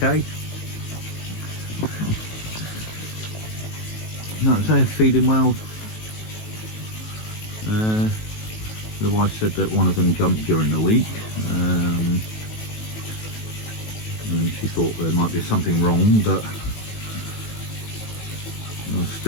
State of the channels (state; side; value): late; right; 18 ms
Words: Like I say, feeding well. The wife said that one of them jumped during the week, and she thought there might be something wrong, but I